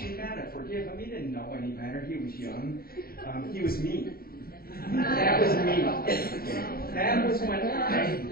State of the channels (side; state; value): right; late; 0.43 ms